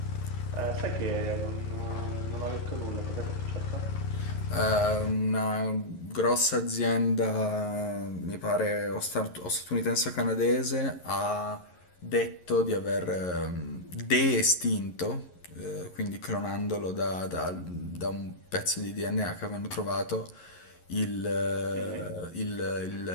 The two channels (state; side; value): late; right; 11 ms